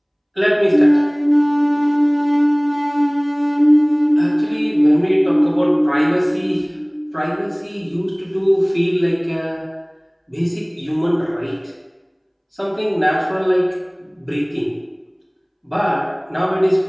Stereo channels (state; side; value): identical; both; correlation 1.00